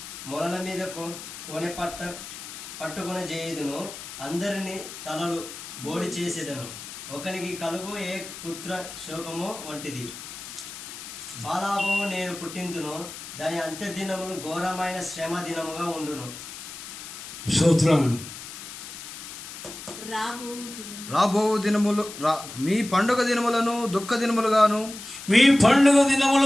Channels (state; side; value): noise; left; hiss, 11 dB below the sound